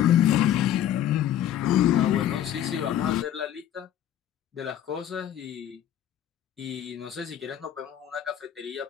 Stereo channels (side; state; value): right; quieter; 11.0 dB